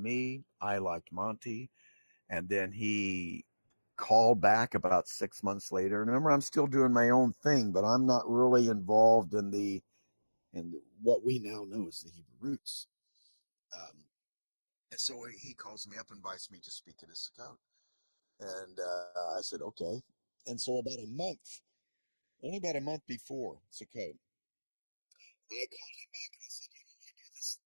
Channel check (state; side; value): inverted; both; correlation -1.00